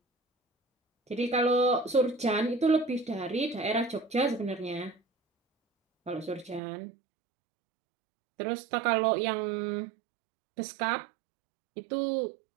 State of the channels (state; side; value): drops out; left; at 6.6 s